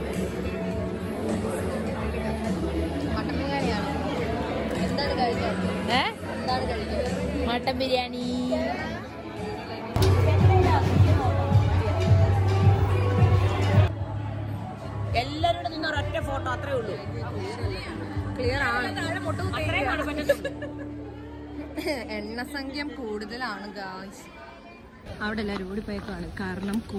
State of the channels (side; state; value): both; identical; correlation 1.00